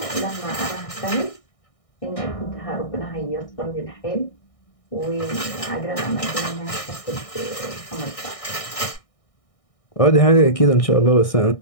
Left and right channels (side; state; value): right; late; 1.6 ms